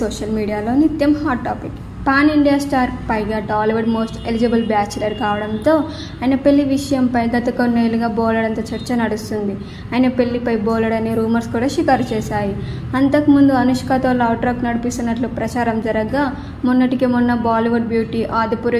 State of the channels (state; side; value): identical; both; correlation 1.00